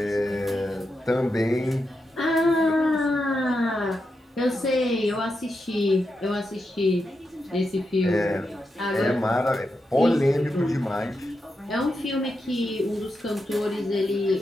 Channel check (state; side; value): normal; both; correlation 0.86